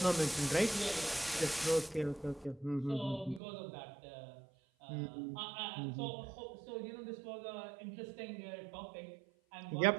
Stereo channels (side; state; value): left; drops out; at 3.4 s